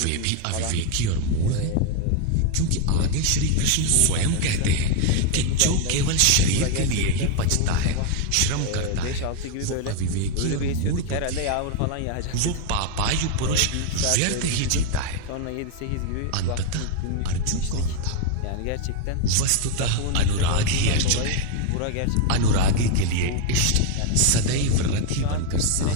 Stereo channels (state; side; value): different; both; correlation 0.01